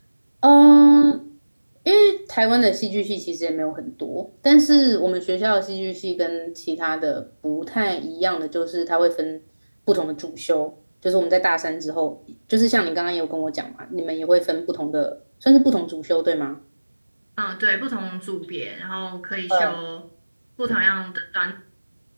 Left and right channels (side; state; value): both; inverted; correlation -1.00